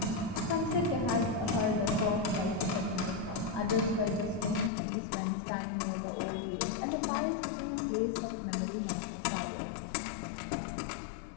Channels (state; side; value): drops out; right; at 4.7 s